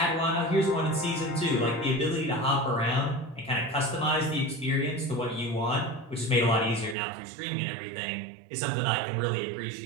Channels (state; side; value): drops out; left; at 7.0 s